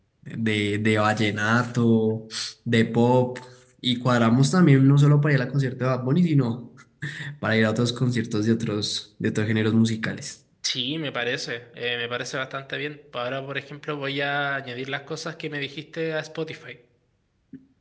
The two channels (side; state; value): both; identical; correlation 1.00